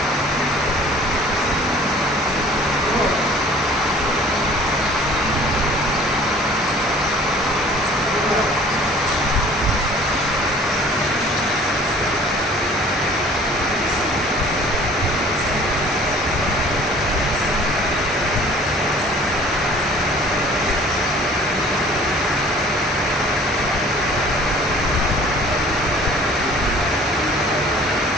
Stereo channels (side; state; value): both; normal; correlation 0.51